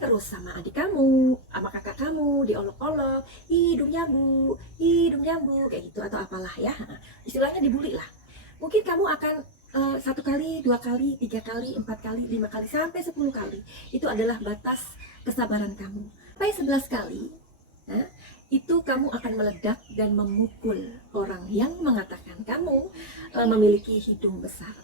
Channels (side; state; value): both; normal; correlation 0.00